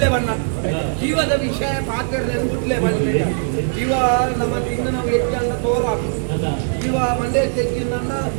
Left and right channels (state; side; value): silent; left; digital silence